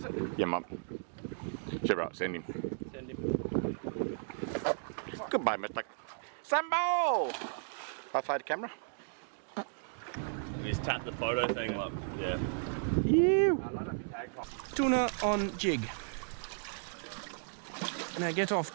it? Yeah, mum. Sure, right, send him. Send him. Goodbye, Mr. Sambo! High five the camera. You just tap the photo thing like, yeah. You. Tuna on jig. Now get off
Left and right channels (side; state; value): left; silent; digital silence